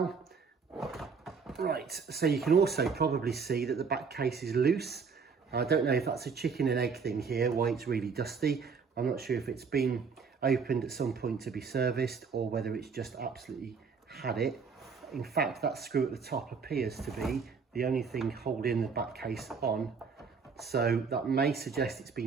Right, so you can also probably see that the back case is loose. I don't know if that's a chicken and egg thing here, why it's really dusty. I'm not sure if it's been opened at some point to be serviced or whether it's just absolutely had it. In fact, that screw at the top appears to be the only thing holding the back case on. So that may suggest it's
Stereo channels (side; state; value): left; quieter; 5.5 dB